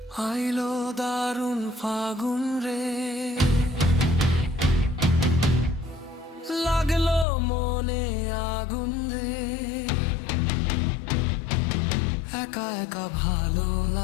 আইলো দারুণ ফাগুন রে, লাগলো মনে আগুন রে, একা একা ভালো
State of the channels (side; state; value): right; drops out; at 7.2 s